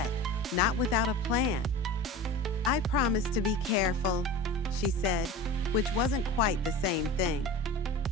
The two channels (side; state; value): both; normal; correlation 0.34